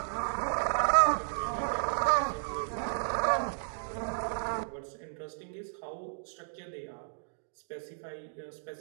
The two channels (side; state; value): left; silent; digital silence